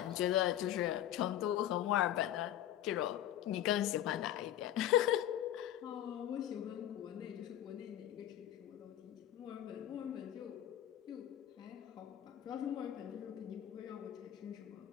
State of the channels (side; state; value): right; quieter; 12.2 dB